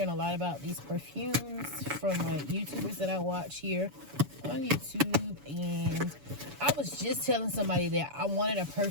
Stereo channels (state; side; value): late; left; 7.0 ms